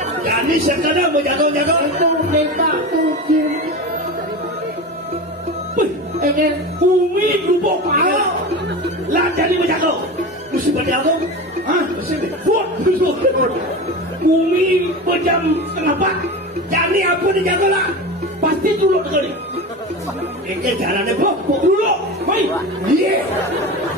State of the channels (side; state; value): both; normal; correlation 0.27